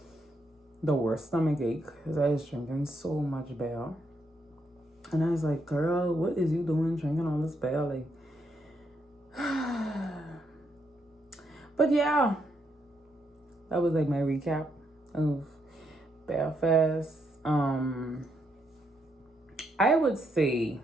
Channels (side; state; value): both; normal; correlation 0.78